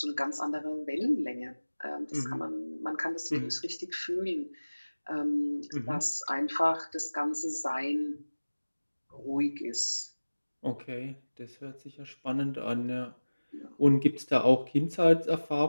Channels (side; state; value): both; inverted; correlation -1.00